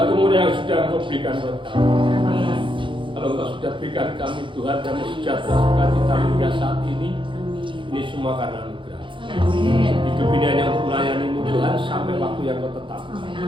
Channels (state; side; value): late; left; 0.24 ms